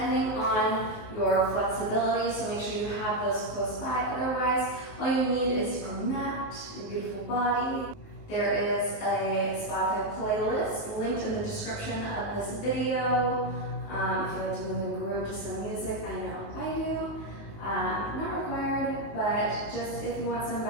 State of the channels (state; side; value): late; right; 19 ms